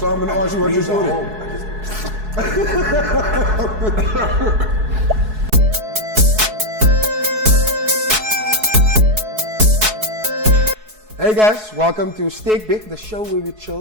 I'm gonna ask you what your story. Hey guys, welcome to SterkBek, the show where we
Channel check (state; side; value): late; left; 4.7 ms